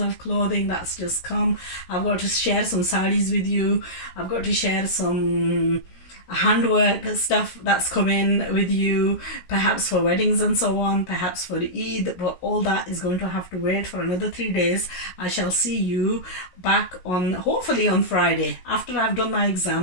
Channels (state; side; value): late; right; 16 ms